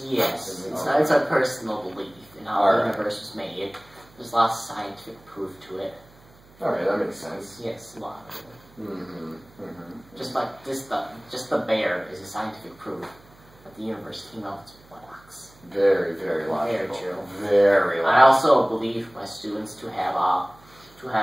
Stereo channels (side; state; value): right; noise; hum, 26 dB below the sound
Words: Yes, it's a personal belief in how the universe was made. There's a lot of scientific proof to it. Alright, that makes sense. Yes, a lot of it. Mm-hmm. Just like just the bear is a scientific proof that the universe came out of its buttocks. Very, very logical. Very true. Very logical. I also believe my students to have